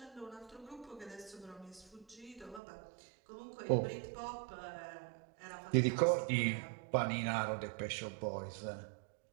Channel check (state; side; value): drops out; left; at 2.6 s